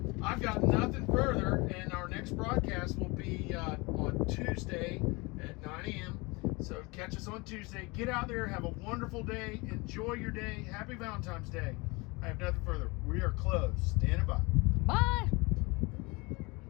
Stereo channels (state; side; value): quieter; right; 26.0 dB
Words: I've got nothing further, and our next broadcast will be on Tuesday at 9 a.m. So catch us on Tuesday. Get out there, have a wonderful day, enjoy your day. Happy Valentine's Day. I have nothing further. We are closed. Standing by. Bye.